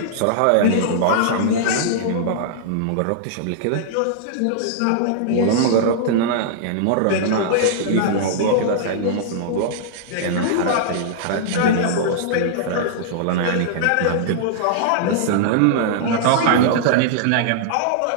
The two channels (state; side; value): different; both; correlation -0.01